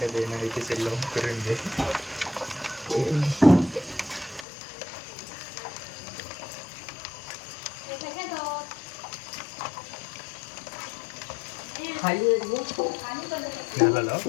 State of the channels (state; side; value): drops out; right; at 4.5 s